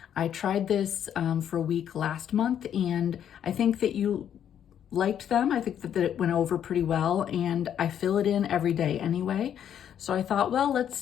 I tried this for a week last month and I think that you liked them. I think that it went over pretty well and I fill it in every day anyway. So I thought, well,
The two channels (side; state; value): right; quieter; 9.4 dB